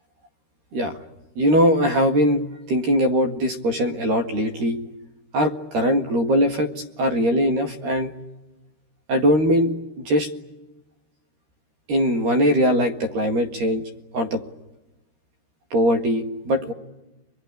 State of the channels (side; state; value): left; late; 13 ms